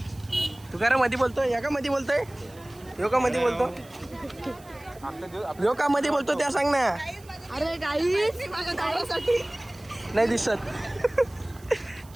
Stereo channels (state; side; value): noise; right; hiss, 25 dB below the sound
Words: तू काय मध्ये बोलतोय? या का मध्ये बोलतोय? यो का मध्ये बोलतो? यो का मध्ये बोलतो त्या सांग ना. अरे गाईस, माझ्या नवऱ्यासाठी नाही दिसत.